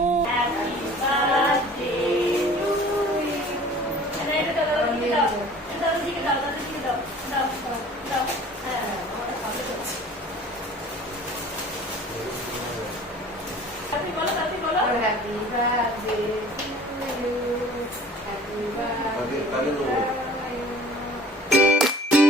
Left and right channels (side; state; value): both; normal; correlation 0.47